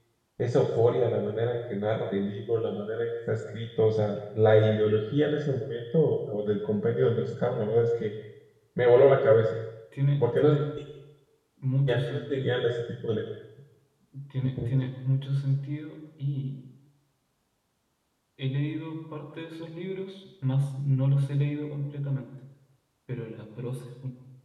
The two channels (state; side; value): identical; both; correlation 1.00